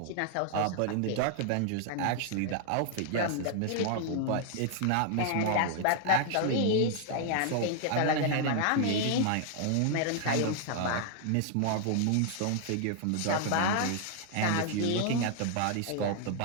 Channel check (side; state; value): both; different; correlation 0.00